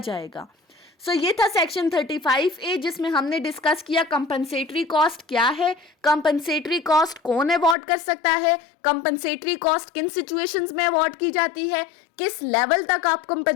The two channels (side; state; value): right; drops out; at 7.8 s